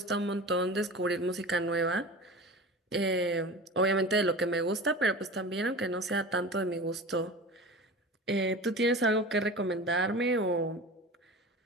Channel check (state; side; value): normal; both; correlation 0.34